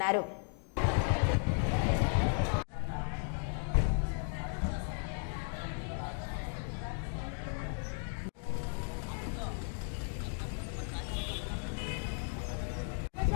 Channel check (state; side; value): silent; right; 54 dB below the other